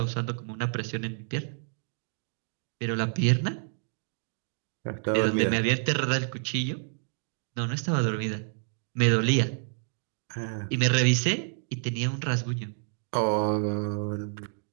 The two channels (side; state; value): left; silent; 59 dB below the other